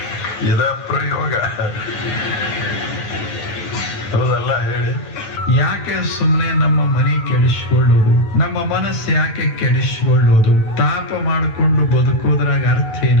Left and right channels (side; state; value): right; late; 9.3 ms